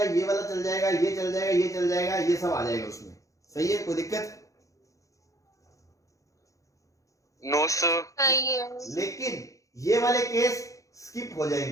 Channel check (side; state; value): right; late; 0.16 ms